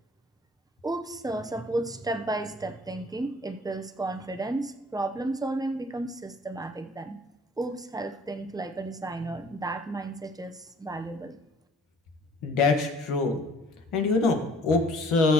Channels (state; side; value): normal; both; correlation 0.54